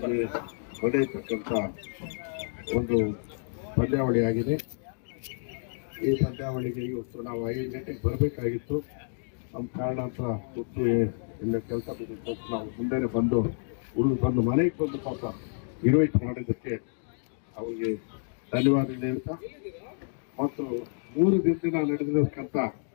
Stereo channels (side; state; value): right; silent; digital silence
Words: ನಡೆಯತಕ್ಕಂಥ ಒಂದು ಪಂದ್ಯಾವಳಿಯಾಗಿದೆ. ಈ ಪಂದ್ಯಾವಳಿಗೆ ಇವತ್ತು ನಾವು 5 ಗಂಟೆಗೆ ಬರಬೇಕಾಗಿತ್ತು. ನಮ್ಮ ಕಾರಣಾಂತರ ಗೊತ್ತು ಇಲ್ಲ ಕೆಲಸ ಬಿದ್ದು ನಾವು ಮುಂದೆನೆ ಬಂದು ಬಂದು ಮನೆಗೆ ಬಂದು ಪಾಪ ಇನ್ವೈಟ್ ಮಾಡಿದ್ದಕ್ಕೆ ಅವರಿಗೆ ಧನ್ಯವಾದ ಹೇಳ್ತಾ ಮತ್ತು 3 ದಿನದಿಂದ ನಡೆದಿರತಕ್ಕಂಥ